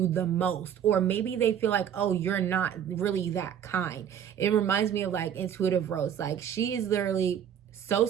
the most, or maybe they feel like, oh, you're not really that kind. It reminds me of like Intuitive Rose. Like she is literally so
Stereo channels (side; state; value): left; quieter; 9.1 dB